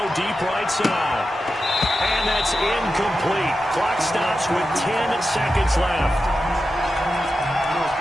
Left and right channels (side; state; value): both; normal; correlation 0.91